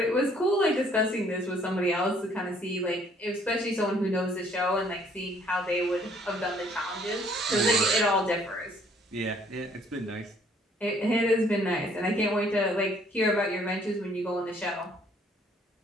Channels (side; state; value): both; normal; correlation 0.62